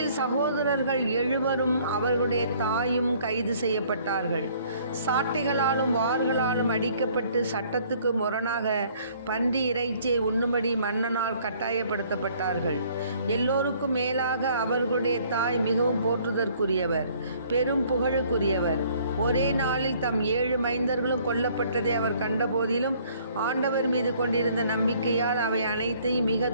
சகோதரர்கள் 7 அவர்களுடைய தாயும் கைது செய்யப்பட்டார்கள். சாட்டைகளாலும் வார்களாலும் அடிக்கப்பட்டு சட்டத்துக்கு முரணாக பன்றி இறைச்சியை உண்ணும்படி மன்னனால் கட்டாயப்படுத்தப்பட்டார்கள். எல்லோருக்கும் மேலாக அவர்களுடைய தாய் மிகவும் போற்றுதற்குரியவர், பெரும் புகழுக்குரியவர். ஒரே நாளில் தம் 7 மைந்தர்களும் கொல்லப்பட்டதை அவர் கண்டபோதிலும் ஆண்டவர் மீது கொண்டிருந்த நம்பிக்கையால் அவை அனைத்தையும் மிக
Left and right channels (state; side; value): inverted; both; correlation -0.59